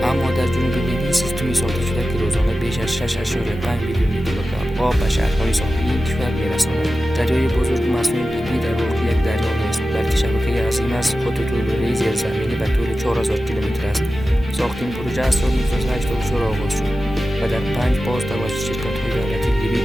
اما در جنوب لیبی سیستمی ساخته شده که روزانه بیش از 6.5 میلیون لیتر آب به شهرهای ساحلی این کشور می‌رساند. دریای بزرگ مصنوعی لیبی در واقع یک دریا نیست، بلکه شبکه عظیم از خطوط لوله‌ای زیرزمینی به طول 4000 کیلومتر است. ساخت این پروژه از سال 1984 آغاز شد و در 5 فاز توسط شرکت‌های دولتی لیبی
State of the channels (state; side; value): normal; both; correlation 0.94